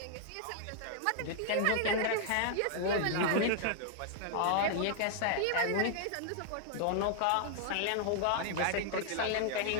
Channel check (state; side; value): different; both; correlation -0.01